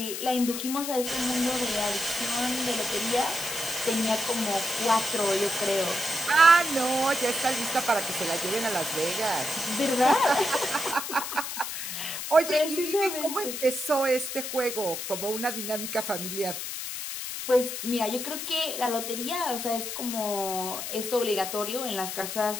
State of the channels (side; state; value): left; noise; hiss, 5 dB below the sound